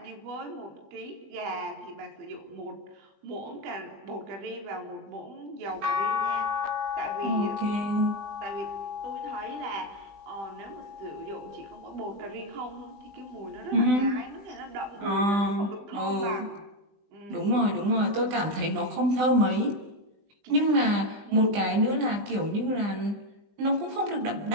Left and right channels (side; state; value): left; late; 20 ms